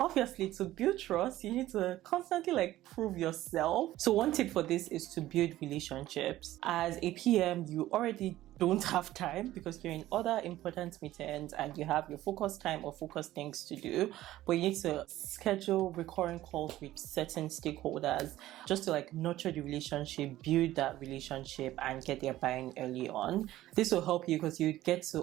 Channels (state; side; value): quieter; left; 15.0 dB